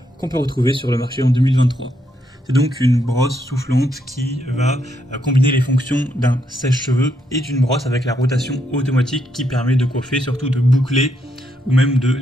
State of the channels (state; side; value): normal; both; correlation 0.77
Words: qu'on peut retrouver sur le marché en 2023. C'est donc une brosse soufflante qui va combiner les fonctions d'un sèche-cheveux et d'une brosse avec la rotation automatique qui permet de coiffer, surtout de boucler ou même de